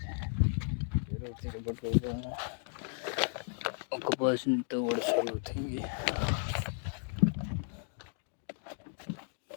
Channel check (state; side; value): silent; right; 55 dB below the other